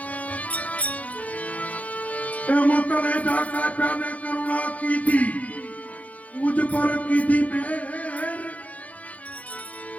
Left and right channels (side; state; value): right; late; 0.069 ms